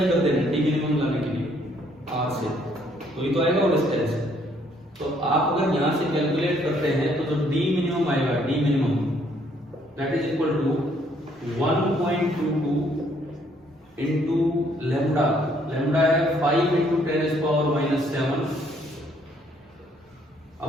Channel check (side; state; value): both; normal; correlation 0.66